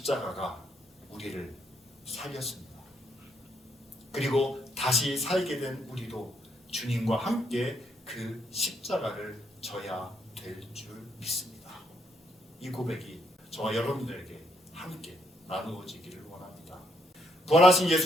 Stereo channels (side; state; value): both; normal; correlation 0.73